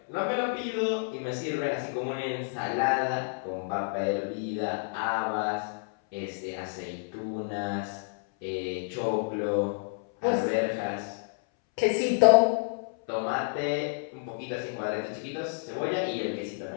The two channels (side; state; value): right; silent; 58 dB below the other